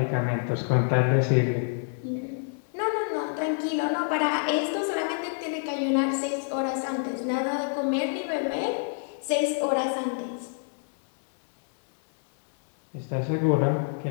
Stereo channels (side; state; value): right; silent; 60 dB below the other